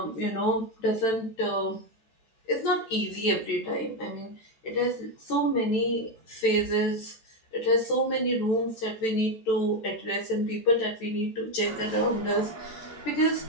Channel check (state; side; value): late; right; 14 ms